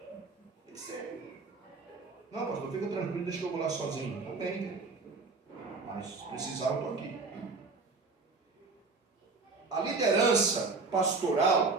Não, pastor, fica tranquilo, deixa que eu vou lá sozinho. Não tem, mas se precisar eu estou aqui. A liderança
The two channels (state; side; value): quieter; left; 4.0 dB